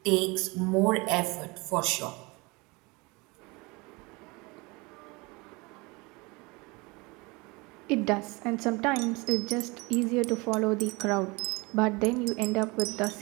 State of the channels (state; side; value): quieter; left; 25.8 dB